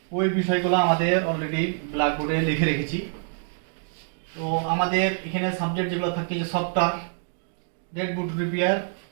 ওই বিষয়গুলো আমাদের অলরেডি ব্ল্যাকবোর্ডে লিখে রেখেছি। তো আমাদের এখানে সাবজেক্ট যেগুলো থাকে যে সফটওয়্যার, ডেডবুট রিপেয়ার,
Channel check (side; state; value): left; silent; digital silence